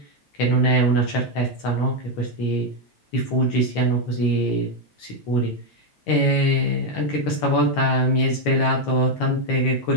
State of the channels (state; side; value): late; right; 12 ms